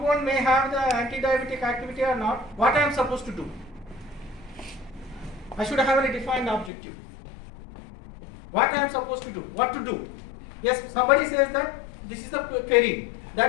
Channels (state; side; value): drops out; right; at 6.7 s